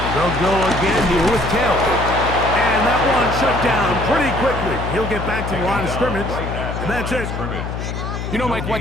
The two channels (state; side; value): noise; left; hum, 5 dB below the sound